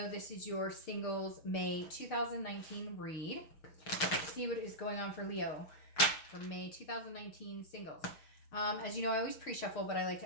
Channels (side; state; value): right; late; 6.4 ms